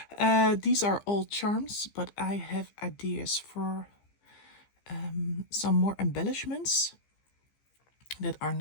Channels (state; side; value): late; right; 15 ms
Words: These are all charms, but I have ideas for some more embellishments that are